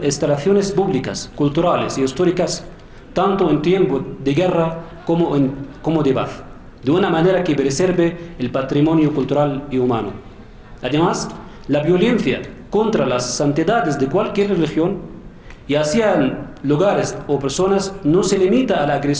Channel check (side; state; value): both; identical; correlation 1.00